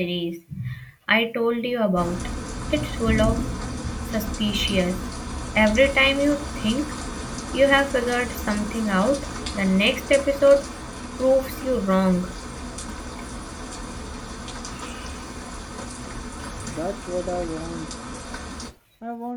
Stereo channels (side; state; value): both; identical; correlation 1.00